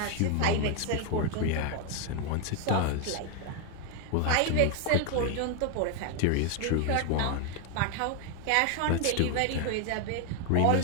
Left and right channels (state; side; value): different; both; correlation 0.01